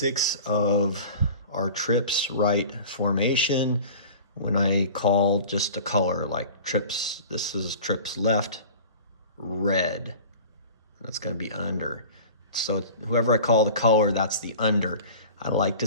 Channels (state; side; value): inverted; both; correlation -0.39